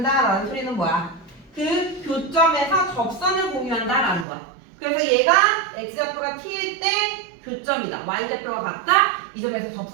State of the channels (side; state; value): left; drops out; at 4.2 s